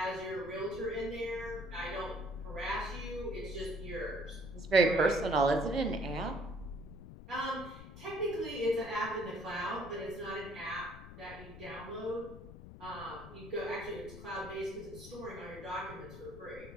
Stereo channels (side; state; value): left; noise; rumble, 14 dB below the sound